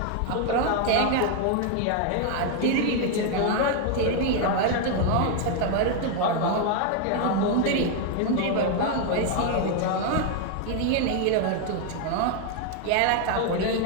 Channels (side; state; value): both; different; correlation 0.00